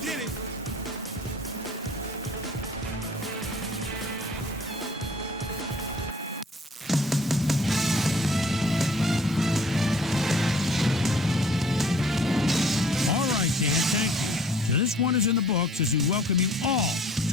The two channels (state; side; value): normal; both; correlation 0.54